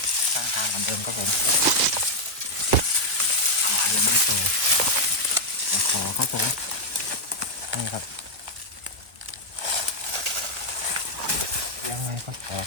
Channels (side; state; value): left; late; 1.2 ms